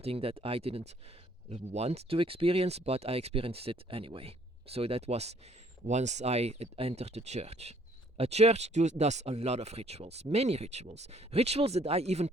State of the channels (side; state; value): both; normal; correlation 0.63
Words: that I didn't want to experience, but I experienced it anyway. So that was once I entered the church. A church does a lot of rituals, many rituals that I even